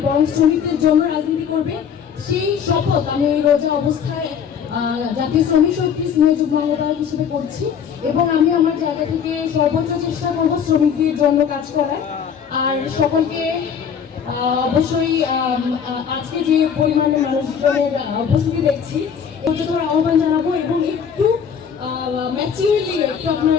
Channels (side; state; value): right; quieter; 7.5 dB